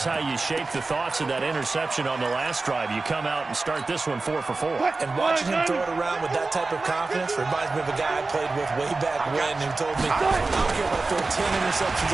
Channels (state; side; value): quieter; left; 3.6 dB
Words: how you shape the thoughts of that interception on the last drive. You come out and start this one 4 for 4. And watching him throw it around with that type of confidence reminds me of a guy I played with way back when who told me, I don't care if I throw 10